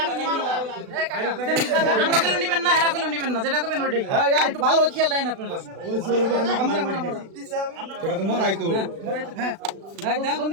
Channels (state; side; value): late; left; 36 ms